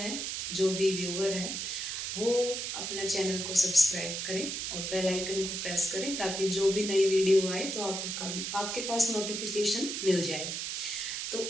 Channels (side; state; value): right; noise; hiss, 3 dB below the sound